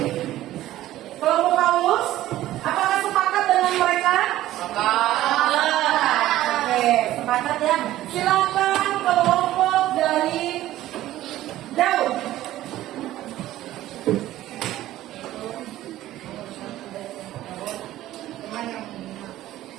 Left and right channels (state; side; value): quieter; left; 14.5 dB